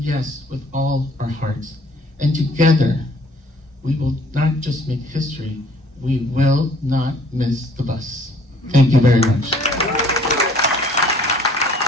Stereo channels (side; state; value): both; normal; correlation 0.57